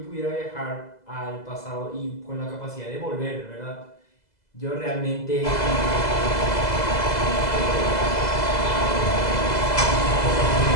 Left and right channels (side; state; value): right; late; 2.0 ms